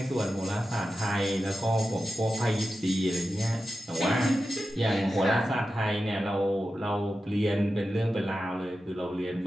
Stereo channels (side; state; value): both; normal; correlation 0.92